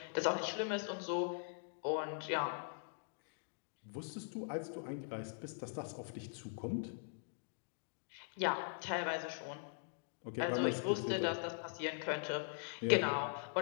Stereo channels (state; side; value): silent; right; digital silence